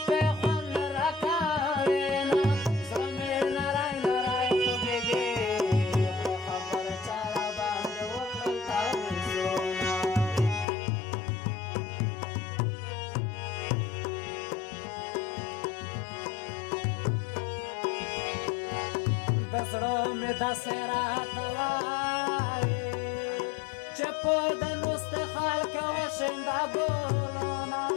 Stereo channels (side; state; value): right; drops out; at 10.7 s